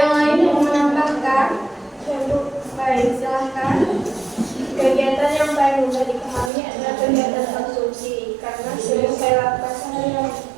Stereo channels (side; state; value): left; drops out; at 6.5 s